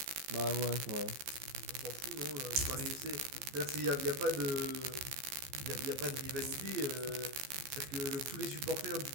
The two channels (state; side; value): late; left; 15 ms